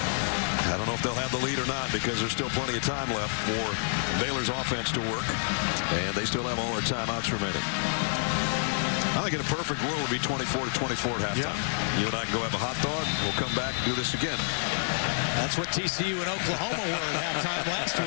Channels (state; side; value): silent; right; digital silence